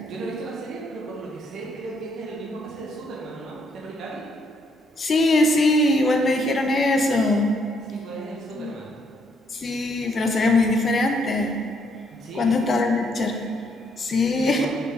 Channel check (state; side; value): normal; both; correlation 0.72